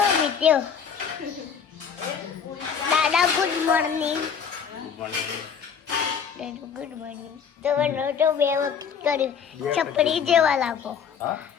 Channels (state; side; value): quieter; right; 7.1 dB